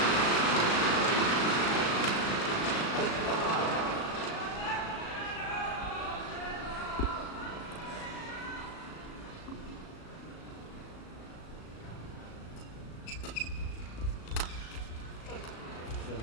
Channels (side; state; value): right; late; 37 ms